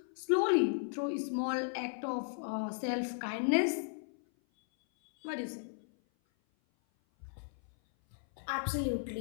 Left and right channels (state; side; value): silent; right; 54 dB below the other